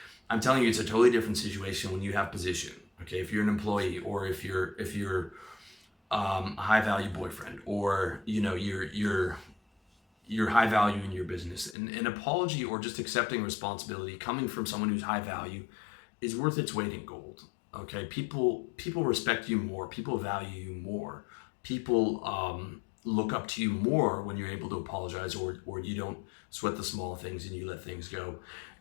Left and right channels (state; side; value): drops out; right; at 11.8 s